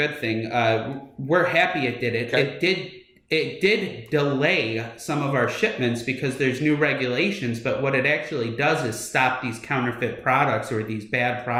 thing. We're happy it did it. Okay. It did delay some of our shipments because there's new regulations, but what it actually does is stop these counterfeit products or these bad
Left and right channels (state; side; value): identical; both; correlation 1.00